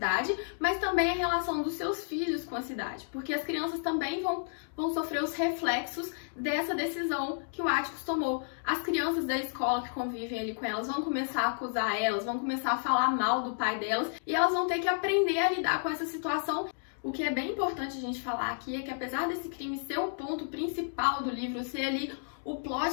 mas também a relação dos seus filhos com a cidade, porque as crianças também vão sofrer os reflexos dessa decisão que o Atticus tomou. As crianças da escola que convivem ali com elas vão começar a acusar elas, vão começar a falar mal do pai delas, e elas vão ter que aprender a lidar com essa situação. O que é bem importante a gente falar aqui é que, apesar desse crime ser o ponto principal do livro, ser ali o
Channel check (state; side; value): silent; right; digital silence